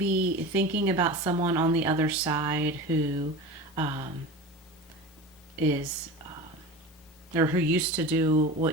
thinking about someone on the other side who is or who used to do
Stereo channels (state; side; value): normal; both; correlation 0.31